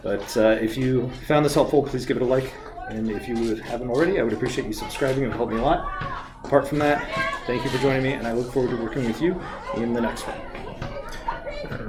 but if you found this helpful, please give it a like, and if you haven't already, I would appreciate you subscribing. It would help me a lot. Apart from that, thank you for joining me, and I look forward to working with you in the next one. All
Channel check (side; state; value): both; identical; correlation 1.00